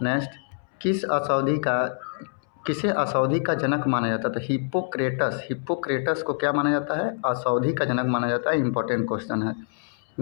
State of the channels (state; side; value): silent; right; 61 dB below the other